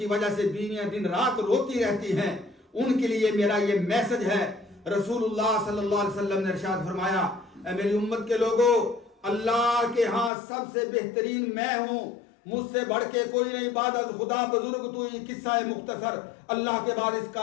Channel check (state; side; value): drops out; right; at 10.3 s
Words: وجہ سے بیویاں دن رات روتی رہتی ہیں، ان کے لیے میرا یہ میسج ہے۔ رسول اللہ صلی اللہ علیہ وسلم نے ارشاد فرمایا، اے میری امت کے لوگوں، اللہ کے ہاں سب سے بہترین میں ہوں، مجھ سے بڑھ کے کوئی نہیں، بعد از خدا بزرگ تو۔ یہ قصہ مختصر، اللہ کے بعد اس